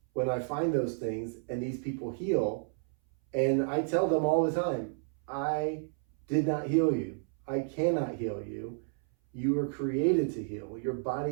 when I find those things and these people heal. And I tell them all the time, I did not heal you. I cannot heal you. You were created to heal. Your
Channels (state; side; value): silent; left; 57 dB below the other